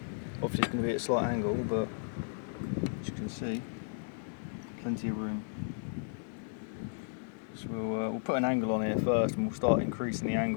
obviously it's going to be at a slight angle, but as you can see, plenty of room. So we'll put an angle on here first, and we'll start increasing the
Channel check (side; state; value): right; silent; 55 dB below the other